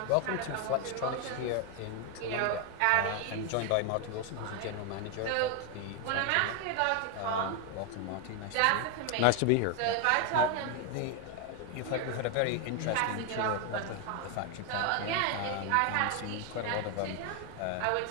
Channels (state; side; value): different; both; correlation 0.01